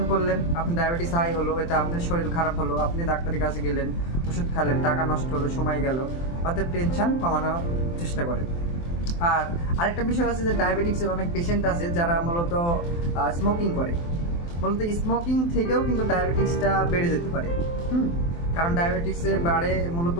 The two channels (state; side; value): late; right; 23 ms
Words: করলেন, আপনার ডায়াবেটিস হাই হলো, এতে আপনার শরীর খারাপ হলো, আপনি ডাক্তারের কাছে গেলেন, ওষুধ খেলেন, টাকা নষ্ট হলো, সময় গেল। অতএব টেনশন কমানোর চেষ্টা করেন। আর আরেকটা বিষয় আছে যে ডায়াবেটিক্সের অনেক পেশেন্ট আছে যারা মূলত স্মোকিং করে। মূলত স্মোকিং থেকেও কিন্তু ডায়াবেটিক্সটা বেড়ে যেতে পারে। কারণ ডায়াবেটিক্সে বাড়ে মূলত